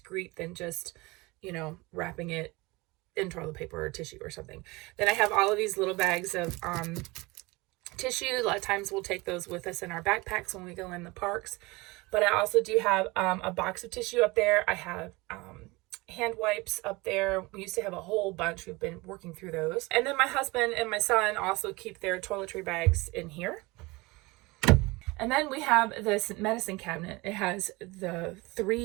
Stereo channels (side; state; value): left; quieter; 23.3 dB